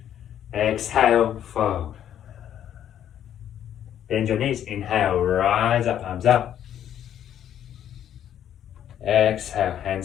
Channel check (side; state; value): right; quieter; 10.3 dB